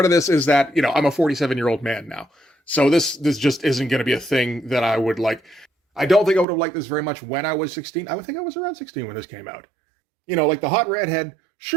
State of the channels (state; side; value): drops out; left; at 6.5 s